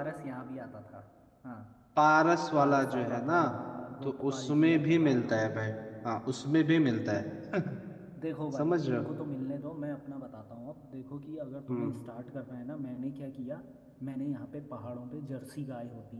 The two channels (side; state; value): both; identical; correlation 1.00